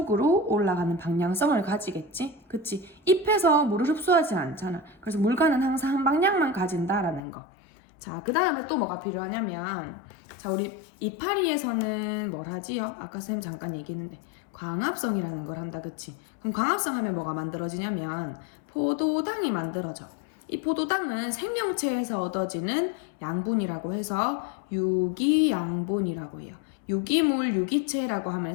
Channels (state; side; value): drops out; right; at 7.2 s